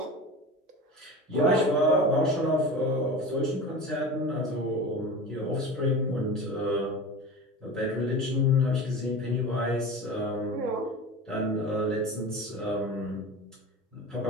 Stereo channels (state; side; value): normal; both; correlation 0.32